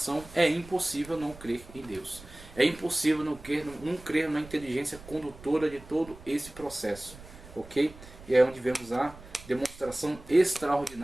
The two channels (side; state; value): right; noise; rumble, 19 dB below the sound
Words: é impossível não crer em Deus. É impossível não crer na inteligência condutora de todo esse processo. Ok? E é onde vemos a demonstração